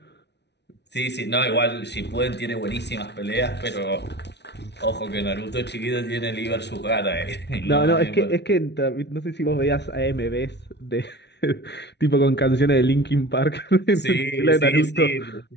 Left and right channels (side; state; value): right; late; 0.50 ms